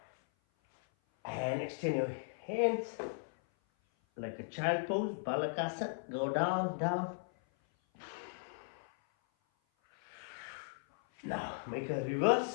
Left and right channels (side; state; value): right; silent; 53 dB below the other